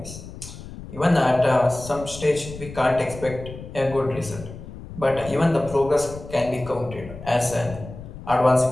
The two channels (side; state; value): left; noise; rumble, 13 dB below the sound